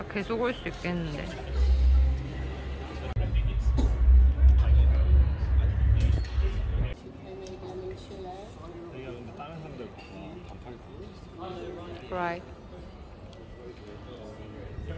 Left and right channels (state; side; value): identical; both; correlation 1.00